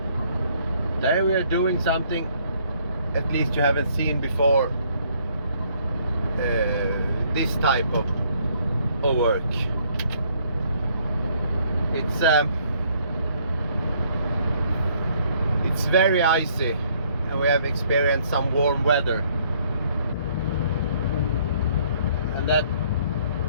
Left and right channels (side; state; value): both; inverted; correlation -0.64